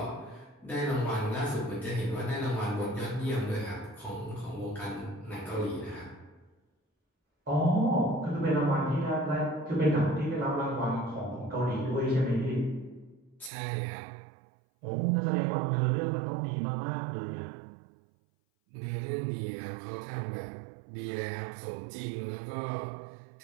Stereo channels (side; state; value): left; drops out; at 13.5 s